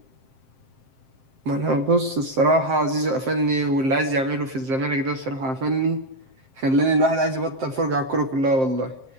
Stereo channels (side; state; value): left; late; 7.6 ms